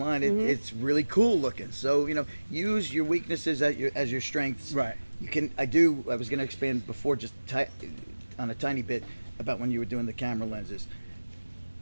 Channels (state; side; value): inverted; both; correlation -1.00